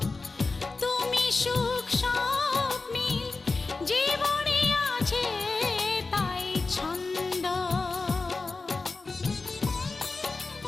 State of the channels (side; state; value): right; quieter; 3.8 dB